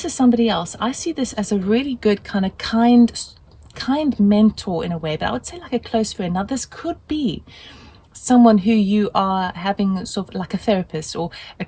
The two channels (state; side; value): identical; both; correlation 1.00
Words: is somebody else, I see this as a really good kind of kind mentor in a way, but I would say like a close friend. Now, this could be someone who you are having sort of like a therapist or a